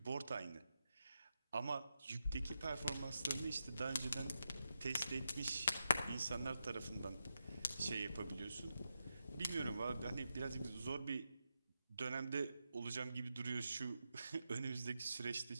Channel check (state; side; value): inverted; both; correlation -0.86